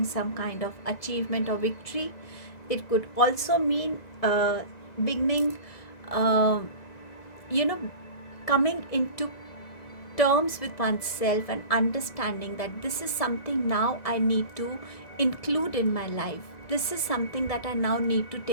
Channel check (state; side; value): late; right; 2.0 ms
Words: some kind of achievement or victory. It could also mean beginning, coming into terms with oneself and understanding that this is something now I need to include in my life. This is something that I now need to